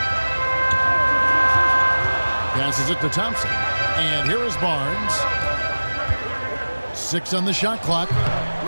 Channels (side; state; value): both; inverted; correlation -1.00